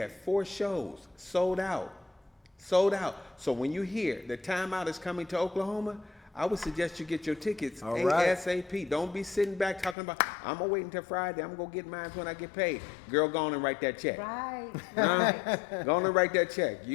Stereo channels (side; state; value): right; drops out; at 10.0 s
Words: 4 shows sold out. Sold out. So when you hear the Timeout is coming to Oklahoma, I would suggest you get your tickets All right. ASAP. Don't be sitting back talking about, I'm going to wait until Friday. I'm going to get mine when I get paid. Girl, go on and write that check. Right. Go on and write that check.